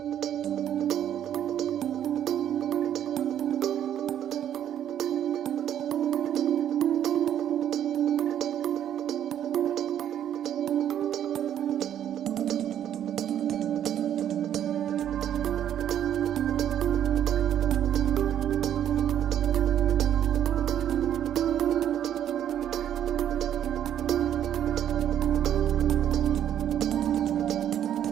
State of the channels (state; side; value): quieter; left; 10.3 dB